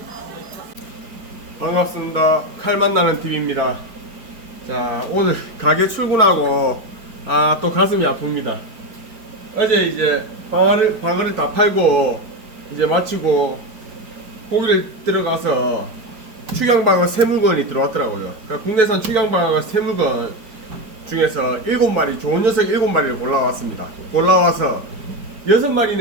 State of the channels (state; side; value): late; left; 4.9 ms